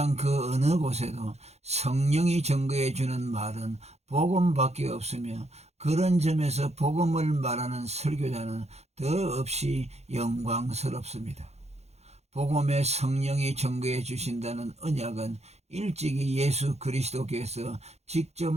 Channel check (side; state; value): left; late; 0.31 ms